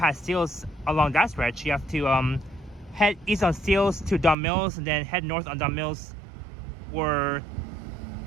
Steeles along that stretch. You have to head east on Steeles to Duncan Mills, and then head north on Duncan Mills, where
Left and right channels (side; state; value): left; drops out; at 4.4 s